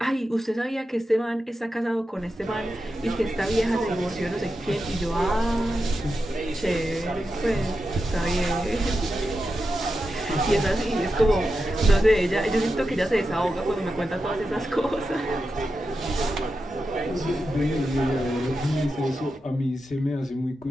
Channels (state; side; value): normal; both; correlation 0.89